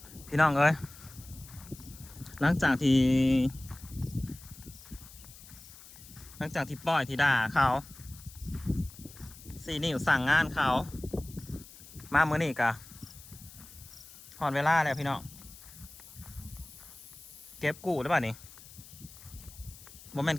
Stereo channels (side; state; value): left; noise; hiss, 19 dB below the sound